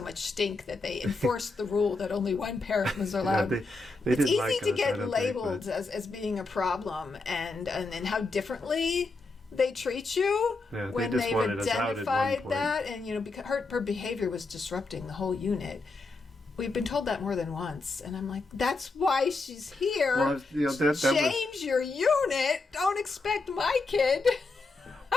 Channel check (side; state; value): right; quieter; 3.5 dB